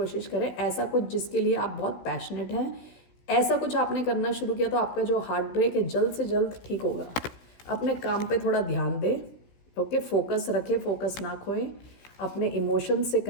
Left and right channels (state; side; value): late; right; 16 ms